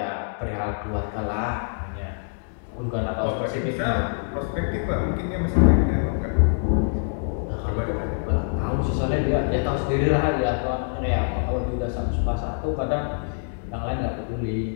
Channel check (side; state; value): right; silent; 62 dB below the other